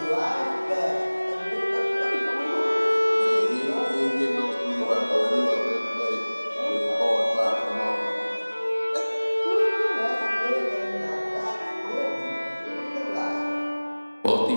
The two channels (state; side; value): inverted; both; correlation -1.00